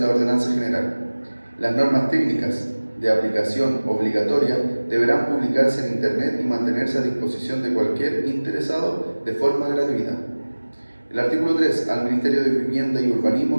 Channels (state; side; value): inverted; both; correlation -1.00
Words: ordenanza general. Las normas técnicas de aplicación obligatoria deberán publicarse en Internet y mantenerse a disposición de cualquier interesado de forma gratuita. El artículo 3. Al Ministerio de Vivienda y